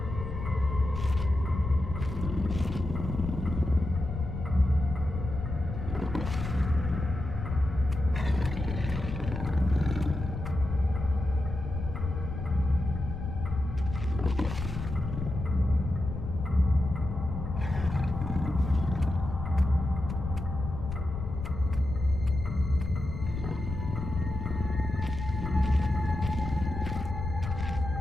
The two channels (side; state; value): left; noise; rumble, 6 dB below the sound